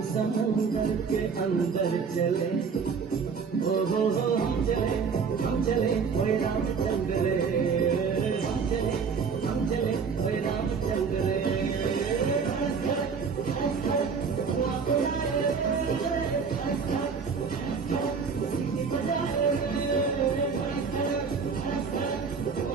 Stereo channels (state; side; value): quieter; left; 5.6 dB